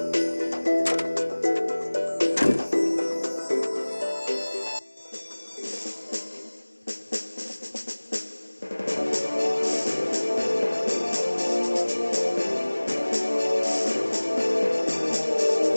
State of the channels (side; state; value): both; inverted; correlation -1.00